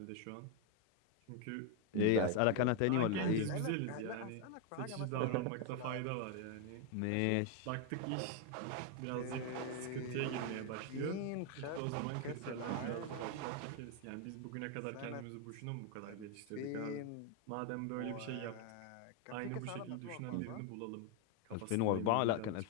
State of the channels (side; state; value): both; different; correlation 0.01